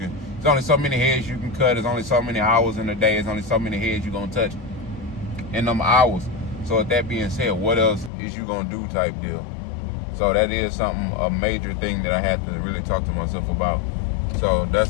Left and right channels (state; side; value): drops out; right; at 8.1 s